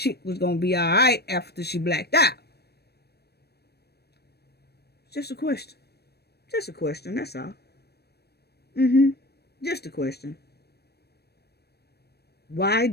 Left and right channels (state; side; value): late; right; 0.47 ms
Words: was going to be all right after she blacked out? Just a question. Just a question, that's all. Just a question. Why